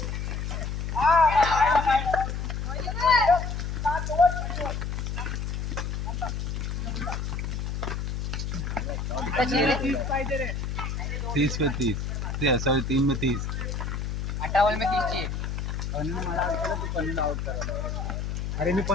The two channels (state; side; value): noise; left; hum, 3 dB below the sound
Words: तीस पे 30 सॉरी 3 में 30. 58 में 30 ची अनु मला वाटलं तू पन्नू आउट करायला अरे मी